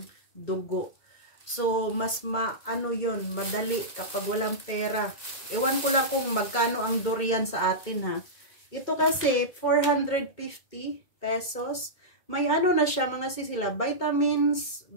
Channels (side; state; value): right; late; 2.2 ms